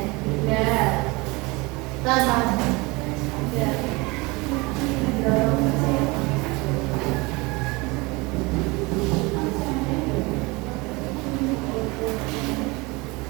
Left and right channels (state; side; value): quieter; left; 24.8 dB